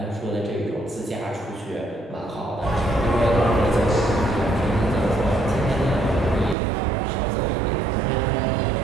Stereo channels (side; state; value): left; drops out; at 6.6 s